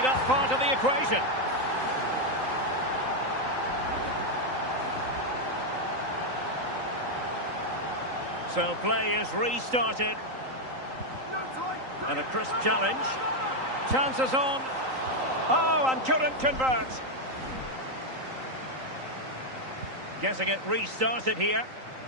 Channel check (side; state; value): left; late; 3.8 ms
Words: up part of the equation. So play is restarted. And a crisp challenge. Chances on. Oh, and couldn't convert. Getting it restarted here.